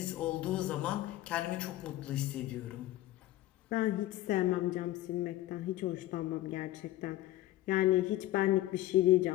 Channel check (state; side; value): quieter; right; 15.4 dB